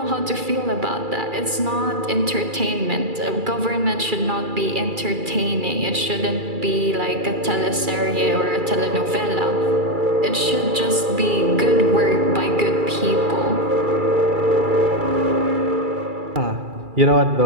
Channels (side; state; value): left; late; 2.3 ms